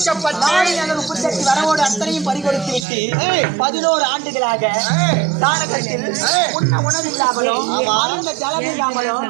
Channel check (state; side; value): drops out; left; at 2.9 s